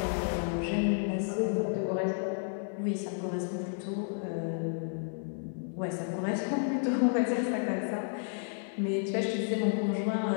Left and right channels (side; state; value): right; silent; digital silence